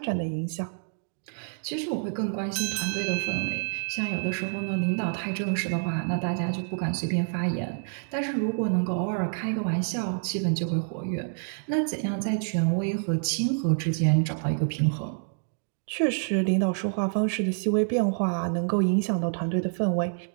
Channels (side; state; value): left; silent; 60 dB below the other